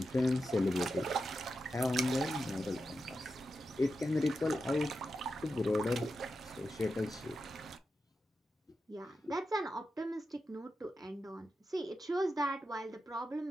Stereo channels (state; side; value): normal; both; correlation 0.89